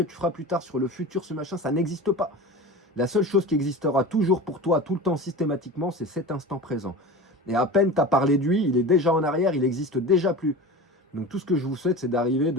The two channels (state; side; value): normal; both; correlation 0.31